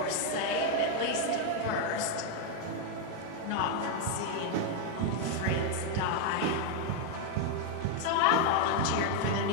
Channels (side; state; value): both; different; correlation 0.00